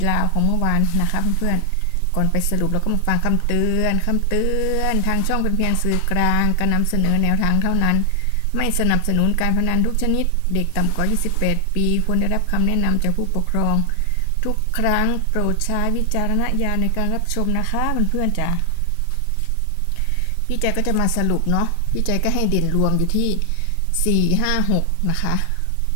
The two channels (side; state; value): both; different; correlation 0.00